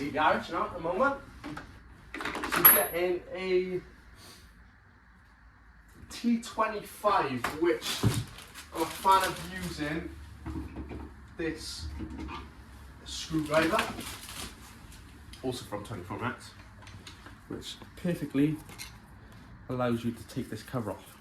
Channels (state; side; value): identical; both; correlation 1.00